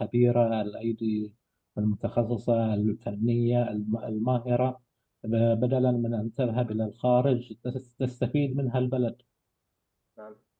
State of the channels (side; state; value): both; identical; correlation 1.00